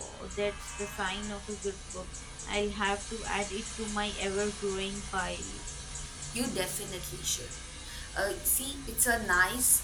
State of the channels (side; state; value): both; identical; correlation 1.00